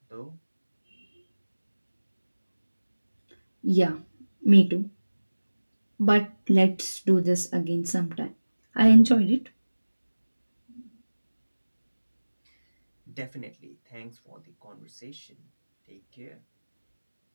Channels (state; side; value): inverted; both; correlation -1.00